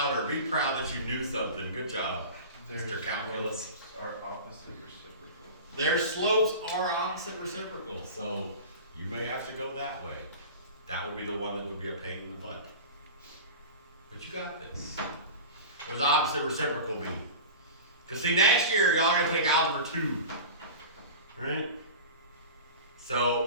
Be proud that you knew something. Good job, Mr. Calculus. Are opposite reciprocal. Their slopes are opposite reciprocal, so you may have to go that way. That would be the one that would be a pain in the butt. But you got this. What does opposite reciprocal mean? Because see, next year, y'all are going to take Algebra 2. Right?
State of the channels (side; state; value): both; inverted; correlation -0.33